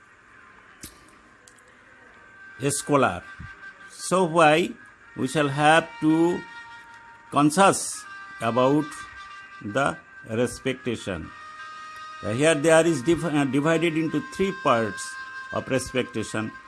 a scholar. So why we shall have to conscious about the respectation. Here there is divided into three parts of respectation.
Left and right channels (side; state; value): both; identical; correlation 1.00